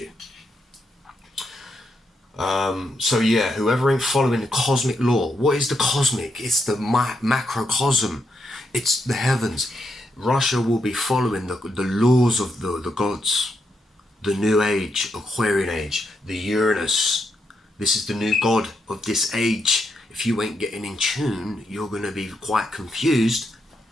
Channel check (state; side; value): normal; both; correlation 0.81